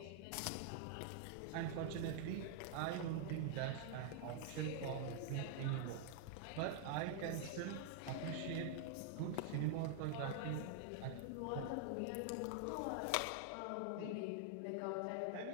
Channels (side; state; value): both; different; correlation 0.00